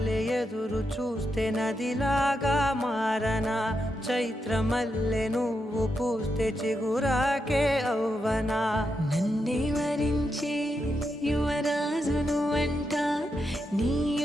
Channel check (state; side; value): normal; both; correlation 0.84